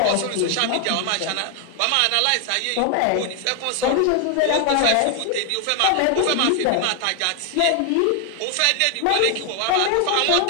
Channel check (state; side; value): different; both; correlation 0.00